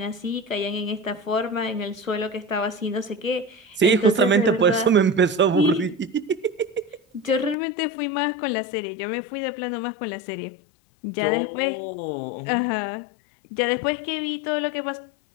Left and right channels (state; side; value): drops out; right; at 7.6 s